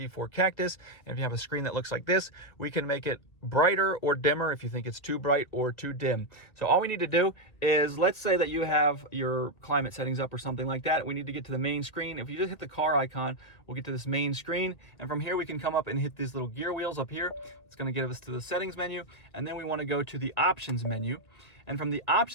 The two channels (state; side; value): late; right; 1.7 ms